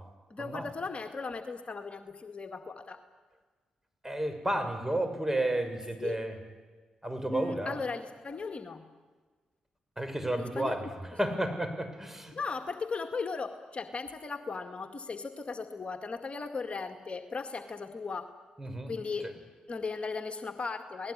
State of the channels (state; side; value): normal; both; correlation 0.87